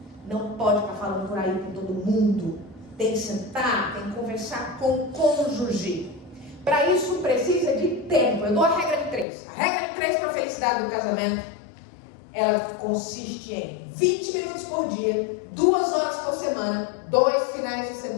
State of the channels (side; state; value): right; drops out; at 9.2 s